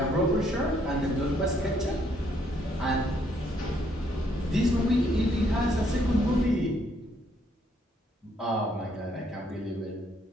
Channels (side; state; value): both; normal; correlation 0.70